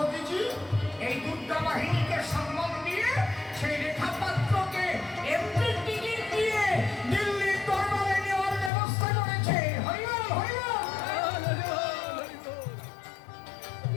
এই দুর্গা বাহিনীকে সম্মান দিয়ে সেই রেখা পাত্রকে এমপি টিকিট দিয়ে দিল্লির দরবারে নেওয়ার ব্যবস্থা করেছে।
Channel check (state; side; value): drops out; right; at 8.7 s